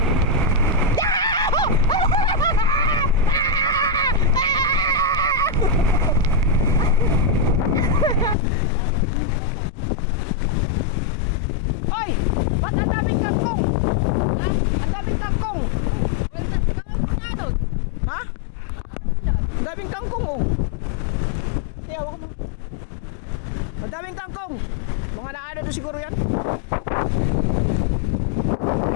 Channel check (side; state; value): right; drops out; at 8.3 s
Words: Hoy! Ba't ang daming kangkong? Ang daming kangkong! Ha? Ang daming kangkong oh! Hindi, hawak mo. Ang daming kangkong! Mga naano doon siguro yan?